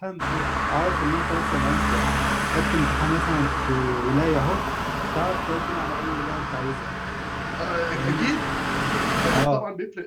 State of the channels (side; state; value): both; identical; correlation 1.00